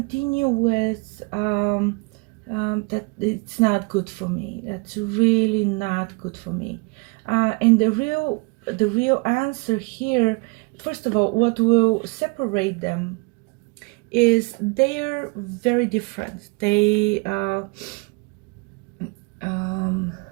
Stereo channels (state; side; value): quieter; left; 30.1 dB